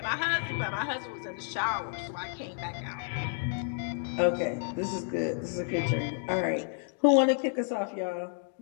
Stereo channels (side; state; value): right; silent; digital silence